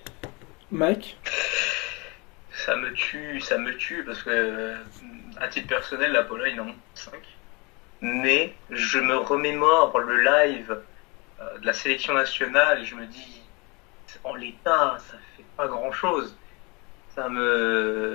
Mike? Ça me tue parce que, à titre personnel, la Pologne en 5. Mais je me remémore le live de la sélection nationale et je me dis, en l'état, ça fait pas grand-chose.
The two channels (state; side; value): quieter; right; 28.4 dB